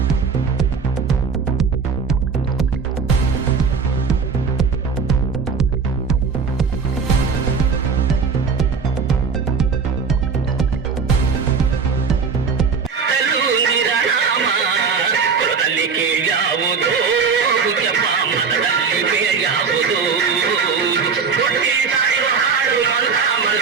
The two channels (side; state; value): left; quieter; 5.6 dB